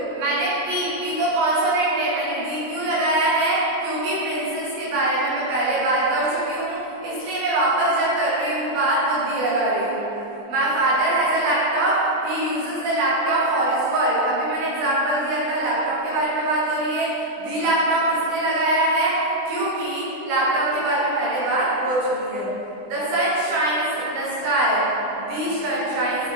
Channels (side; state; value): left; late; 20 ms